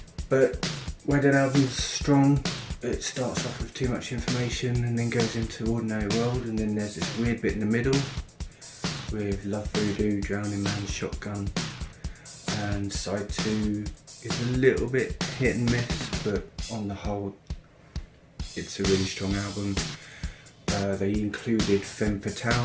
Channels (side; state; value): both; identical; correlation 1.00